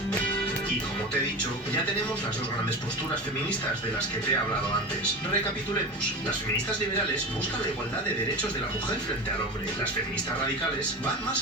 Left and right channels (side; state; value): both; normal; correlation 0.28